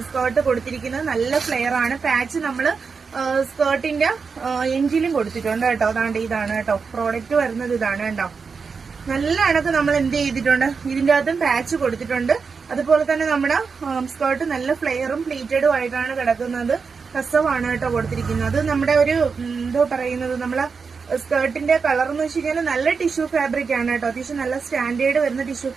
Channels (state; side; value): quieter; left; 5.3 dB